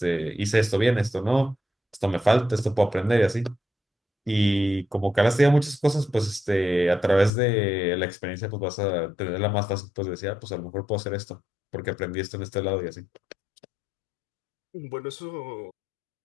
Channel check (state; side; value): drops out; right; at 7.3 s